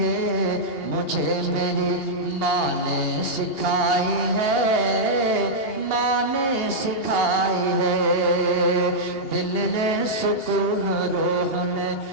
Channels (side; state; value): right; late; 2.8 ms